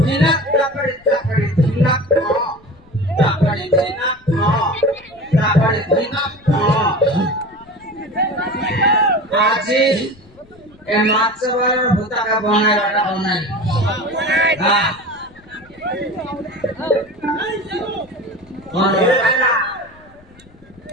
Hinak takari hinak takari hinak Aji emat sebar buta ka bonai rada bonai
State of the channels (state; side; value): noise; left; rumble, 27 dB below the sound